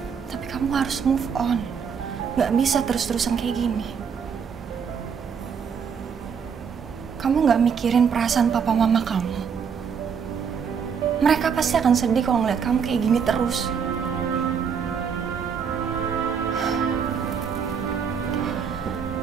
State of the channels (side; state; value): left; quieter; 6.7 dB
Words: Tapi kamu harus move on. Gak bisa terus-terusan kayak gini. Kamu gak mikirin perasaan papa mama kamu. Mereka pasti akan sedih kalau ngeliat kamu kayak gini terus.